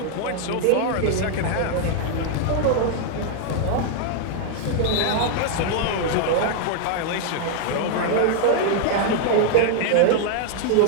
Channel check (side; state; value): both; different; correlation 0.00